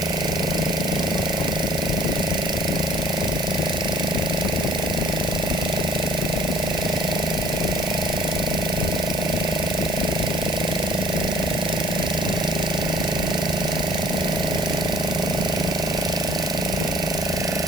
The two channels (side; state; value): right; noise; hiss, 8 dB below the sound